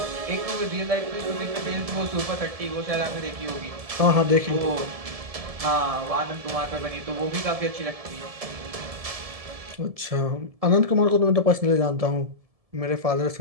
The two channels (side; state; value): left; late; 1.7 ms